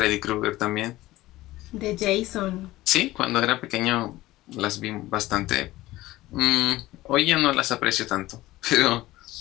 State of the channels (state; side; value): quieter; right; 17.3 dB